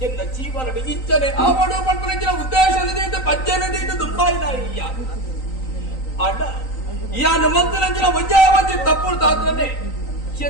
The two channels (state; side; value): late; right; 3.9 ms